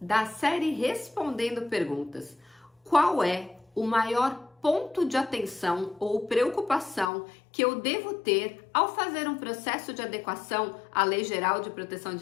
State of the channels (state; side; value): drops out; right; at 7.1 s